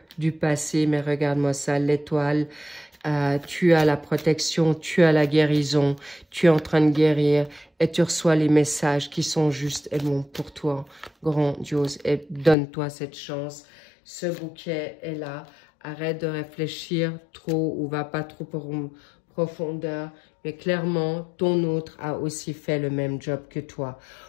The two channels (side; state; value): right; drops out; at 12.6 s